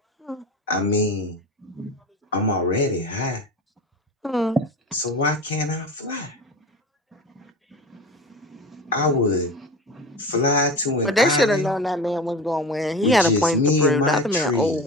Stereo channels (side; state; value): both; normal; correlation 0.31